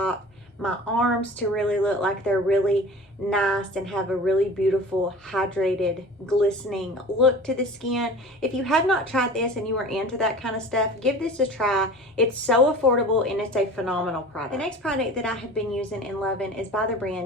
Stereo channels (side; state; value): both; normal; correlation 0.40